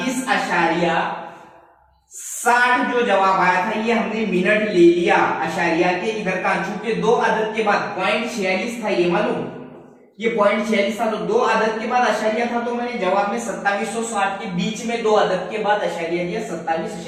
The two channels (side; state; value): both; identical; correlation 1.00